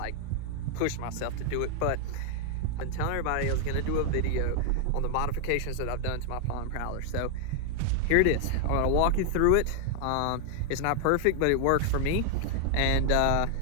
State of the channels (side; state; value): both; different; correlation 0.00